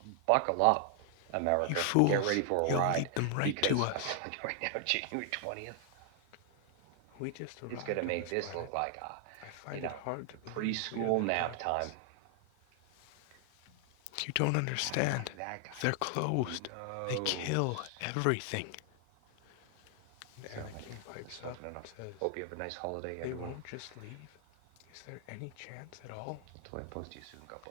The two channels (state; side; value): different; both; correlation 0.00